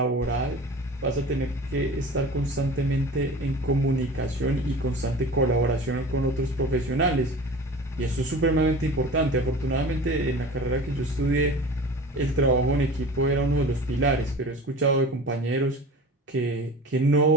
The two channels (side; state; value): both; normal; correlation 0.37